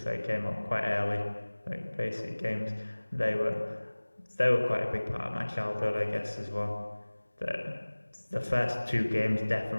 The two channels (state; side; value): inverted; both; correlation -1.00